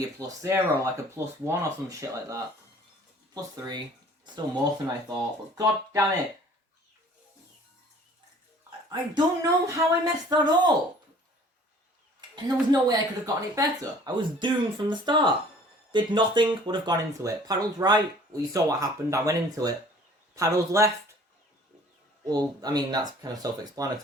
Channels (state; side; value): normal; both; correlation 0.51